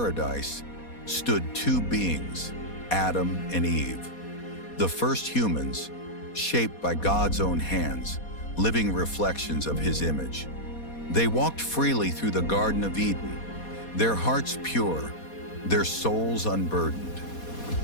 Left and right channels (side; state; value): right; late; 4.2 ms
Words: stood two beings, Adam and Eve, the first humans, shaped by God's own hands, living reflections of His image. They walked freely through the Garden of Eden, their hearts pure, their souls unburdened.